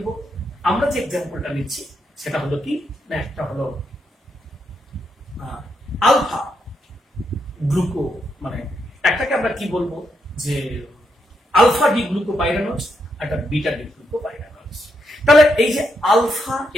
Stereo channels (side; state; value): both; normal; correlation 0.80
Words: আমরা যে এক্সাম্পলটা নিচ্ছি সেটা হলো কি না, একটা হলো আলফা গ্লুকো, মানে একটাকে আমরা কি বলবো যে আলফা ডি গ্লুকোপাইরানোজ, একটা বিটা ডি গ্লুকোপাইরানোজ। তাহলে এই যে আলফা